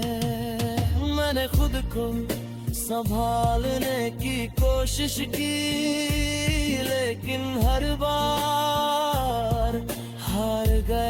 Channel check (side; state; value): both; identical; correlation 1.00